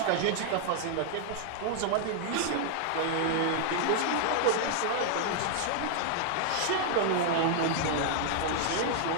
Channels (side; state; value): both; different; correlation 0.00